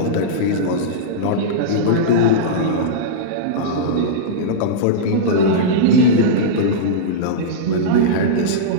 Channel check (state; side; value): different; both; correlation -0.04